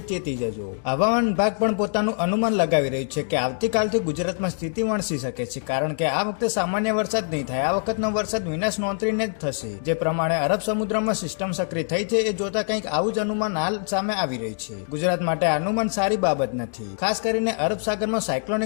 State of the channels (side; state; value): right; silent; 62 dB below the other